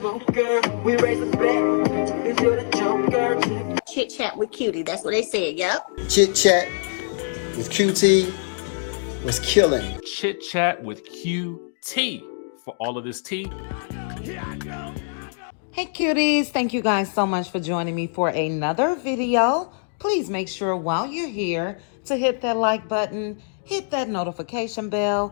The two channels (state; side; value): silent; right; digital silence